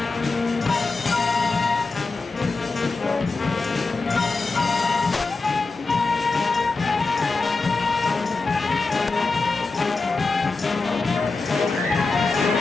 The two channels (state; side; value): quieter; right; 3.9 dB